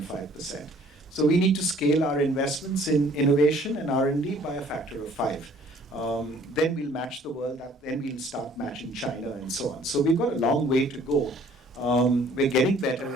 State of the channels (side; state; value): both; normal; correlation 0.57